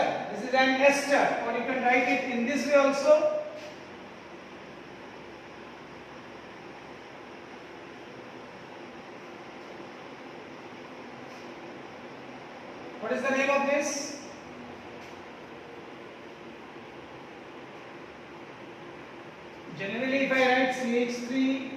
This is an ester, or you can write it in this way also. What is the name of this? Generally, if I write CH3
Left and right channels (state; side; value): identical; both; correlation 1.00